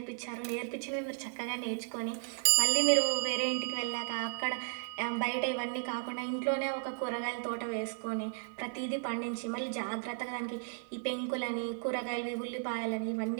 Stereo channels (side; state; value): left; silent; digital silence